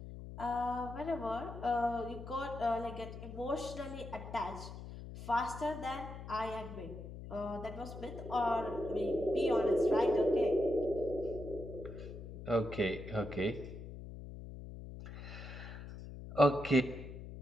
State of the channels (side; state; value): left; noise; hum, 11 dB below the sound